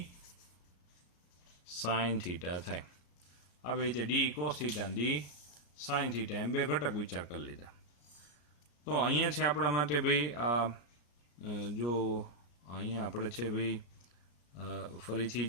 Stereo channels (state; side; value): late; right; 34 ms